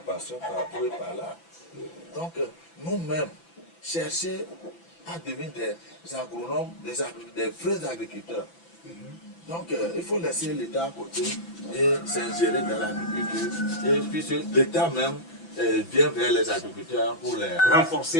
par et par là. Donc nous-mêmes, chercher à devenir des agronomes, des vrais agriculteurs. Donc il faut laisser l'État à côté et s'ingérer dans l'agriculture. Et puis l'État même vient vers les agriculteurs pour les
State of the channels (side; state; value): right; late; 6.0 ms